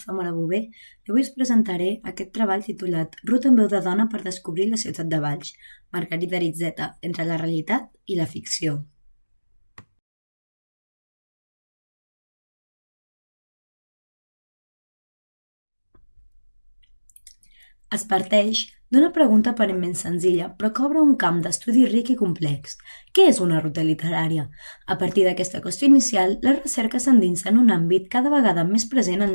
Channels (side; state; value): both; inverted; correlation -1.00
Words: Zamora Bové i avui us presentaré aquest treball titulat Ruta en veu de dona per descobrir la ciutat de Valls, Margarida Aritzeta, entre la realitat i la ficció. Es parteix d'una pregunta aparentment senzilla, però que obre un camp d'estudi ric i complex. Què és una ruta literària? A partir d'aquesta qüestió inicial, la recerca s'endinsa en un àmbit cada vegada més present en